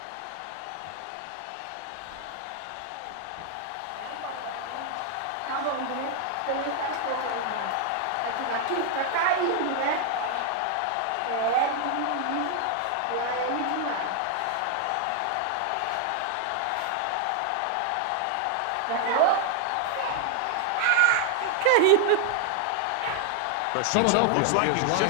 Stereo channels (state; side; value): different; both; correlation 0.00